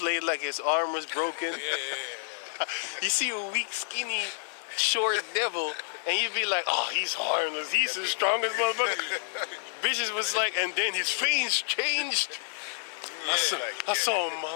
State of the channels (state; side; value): silent; right; 59 dB below the other